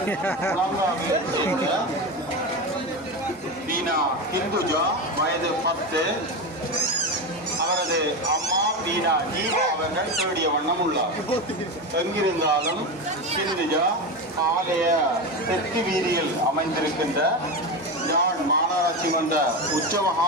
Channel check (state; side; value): normal; both; correlation 0.19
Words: பீனா ஹிந்துஜா வயது 10 அவரது அம்மா பீனா ஜீவா அவர்கள் தேடிய வண்ணம் உள்ளார். எங்கிருந்தாலும் ஹிந்துஜா ஆலய தெற்கு வீதியில் அமைந்திருக்கின்ற யாழ் மாநகராட்சி மன்ற